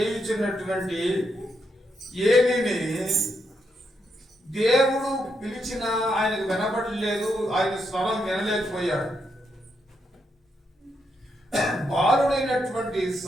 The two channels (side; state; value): both; normal; correlation 0.81